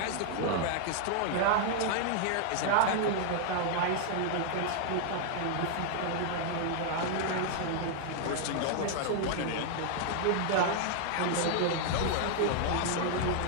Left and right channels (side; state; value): both; different; correlation 0.00